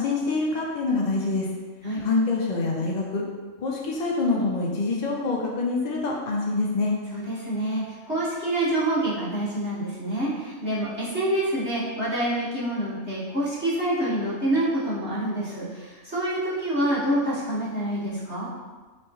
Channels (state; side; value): late; left; 3.2 ms